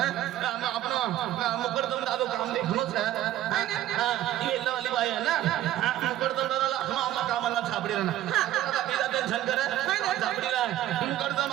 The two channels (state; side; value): quieter; left; 13.3 dB